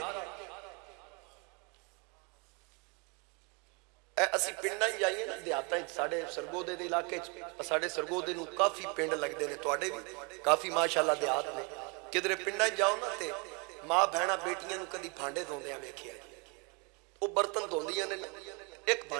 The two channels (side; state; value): left; quieter; 32.0 dB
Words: اسی پنڈاں ہی جائیے نا دیہاتاں ساڑھے سرگودے دے علاقے، ساڑھے سرگودے نو کافی پنڈ لگ دے نے، توڑے بھی کافی ماشاءاللہ دیہات نے، کدھرے پنڈاں جاؤ نا تے ماں بہنا بیٹیاں نو کدی بھانڈے دھوندے ہیں ویکھیا، وہ برتن دھوندیاں نے ایک